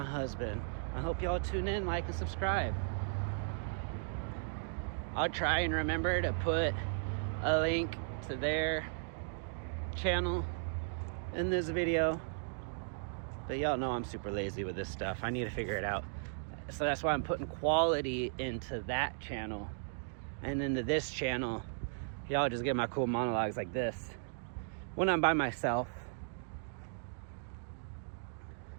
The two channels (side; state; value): left; silent; digital silence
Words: husband. I hope y'all tune in, like, and subscribe. I'll try and remember to put a link to their channel in this video. But y'all know I'm super lazy with this stuff. I need to figure it out. So that's why I'm putting quality into that channel and into this channel. y'all just get my cool monologues like this when I'm by myself.